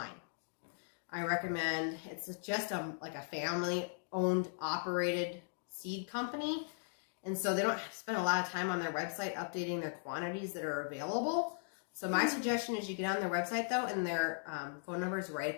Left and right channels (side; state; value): right; silent; digital silence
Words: I recommend, it's just like a family-owned, operated seed company. And so they don't spend a lot of time on their website updating their quantities that are available. So my suggestion is you get on their website, though, and their phone number is right